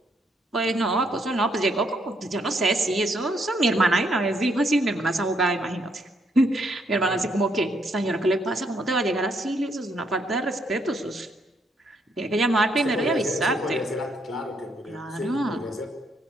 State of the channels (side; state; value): both; normal; correlation 0.73